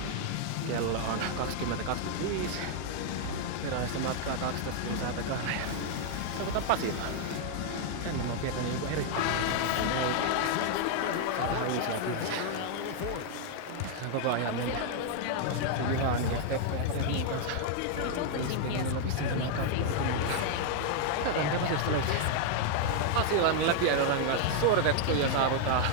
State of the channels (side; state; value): both; different; correlation 0.00